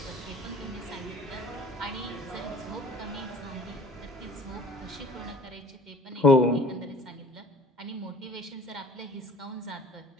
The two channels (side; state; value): both; normal; correlation 0.48